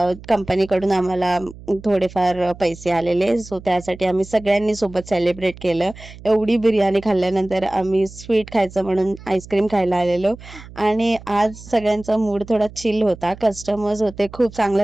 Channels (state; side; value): noise; right; hum, 17 dB below the sound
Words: कंपनीकडून आम्हाला थोडेफार पैसे आलेले, सो त्यासाठी आम्ही सगळ्यांनी सोबत सेलिब्रेट केलं. एवढी बिर्याणी खाल्ल्यानंतर आम्ही स्वीट खायचं म्हणून आईस्क्रीम खायला आलेलो. आणि आज सगळ्यांचा मूड थोडा चिल होता. कस्टमर्स होते, खूप